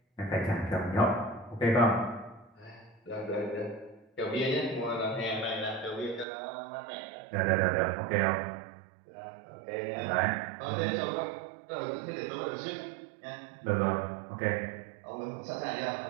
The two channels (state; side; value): drops out; left; at 6.2 s